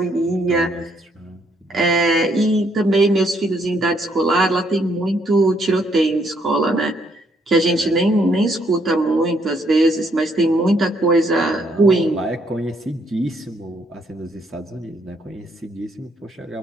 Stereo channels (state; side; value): normal; both; correlation 0.70